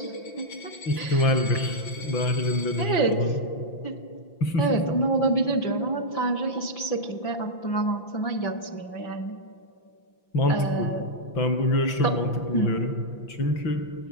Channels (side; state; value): right; late; 5.9 ms